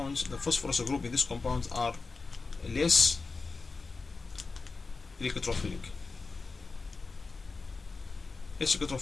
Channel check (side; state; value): right; quieter; 4.2 dB